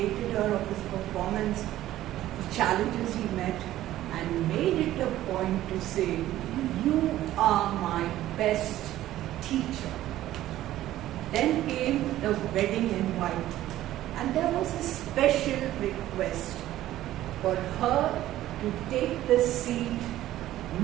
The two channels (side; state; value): left; quieter; 14.1 dB